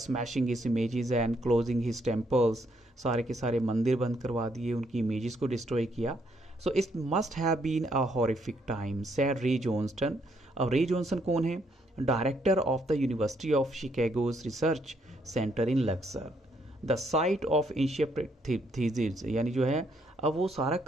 his images and closing his temples, सारे के सारे मंदिर बंद करवा दिए, उनकी इमेजेस को डिस्ट्रॉय किया। So it must have been a horrific time said Ray Johnston. अब रे जॉनसन कौन है, director of the University of Chicago's research centre in Luxor, the site of ancient Thebes, यानी जो है अब वो सारा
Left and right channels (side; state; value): both; normal; correlation 0.72